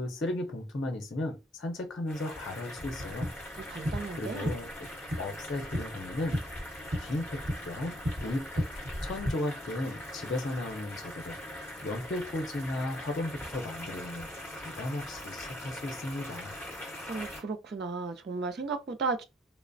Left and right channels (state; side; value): normal; both; correlation 0.68